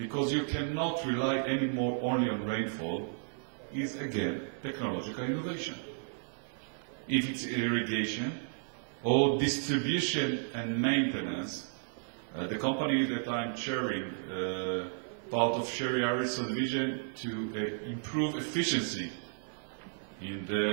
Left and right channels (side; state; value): left; silent; 56 dB below the other